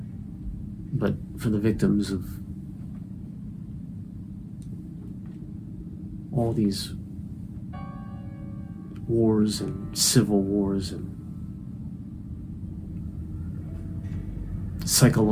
but for the victims of all these wars and civil wars and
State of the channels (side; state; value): both; identical; correlation 1.00